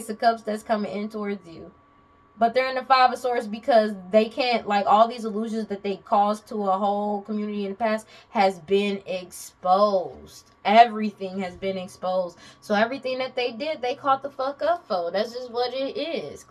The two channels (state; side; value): identical; both; correlation 1.00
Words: of Cups that's coming in towards you. But they're in the Five of Swords because they can't, like, all these illusions that they caused to a whole community in the past has been exposed. Everything has been exposed. So everything that they did, they caught the fuck up for. That's just what it is.